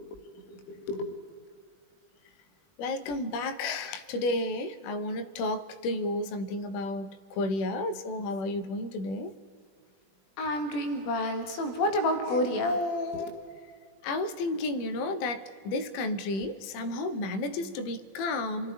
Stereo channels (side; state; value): right; late; 21 ms